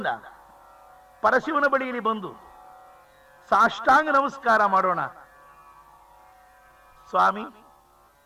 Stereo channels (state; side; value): identical; both; correlation 1.00